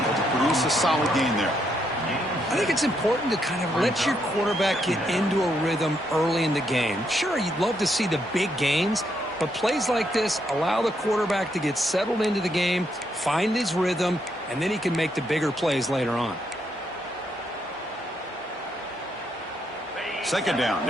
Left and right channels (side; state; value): both; normal; correlation 0.77